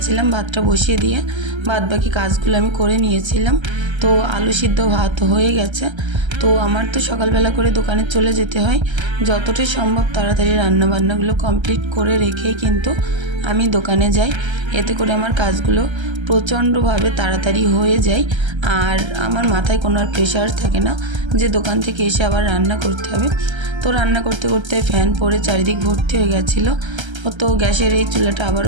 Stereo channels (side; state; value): left; late; 1.3 ms